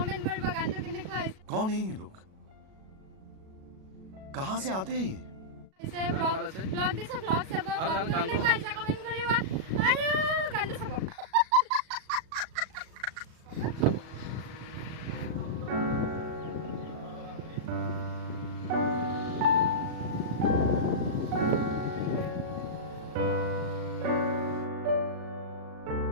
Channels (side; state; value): left; late; 37 ms